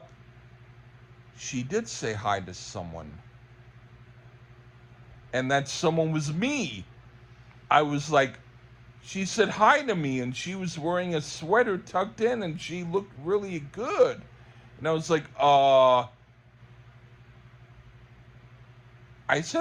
she did say hi to someone, and that someone was me. I was like, she said hi to me, and she was wearing a sweater tucked in, and she looked really good. And I was like, I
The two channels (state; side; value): identical; both; correlation 1.00